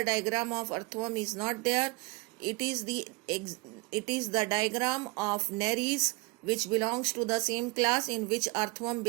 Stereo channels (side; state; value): left; quieter; 26.8 dB